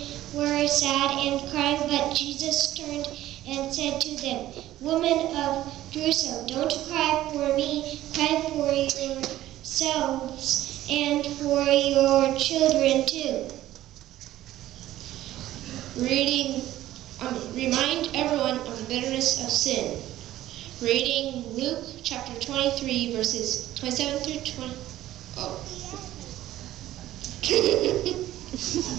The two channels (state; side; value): quieter; left; 14.2 dB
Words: were sad and crying, but Jesus turned and said to them, "Women of Jerusalem, don't cry for me, cry for yourselves and for your children too." Remind everyone of the bitterness of sin. Reading Luke chapter 23, verses 27 through 20. Oh.